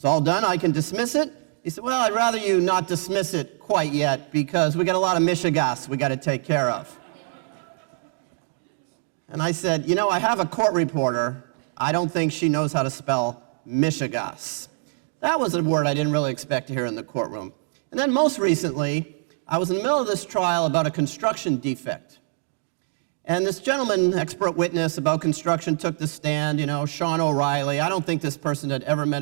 all done, I can dismiss it?" He said, "Well, I'd rather you not dismiss it quite yet because we got a lot of mishigas we got to take care of." And I said, "You know, I have a court reporter. I don't think she knows how to spell mishigas." That was a word I didn't really expect to hear in the courtroom. And then most recently, I was in the middle of this trial about a construction defect. And this gentleman, expert witness about construction, took the stand, Sean O'Reilly. I don't think this person had ever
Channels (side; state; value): left; silent; digital silence